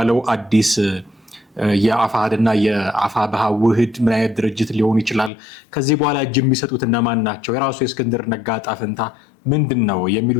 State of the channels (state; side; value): drops out; right; at 5.3 s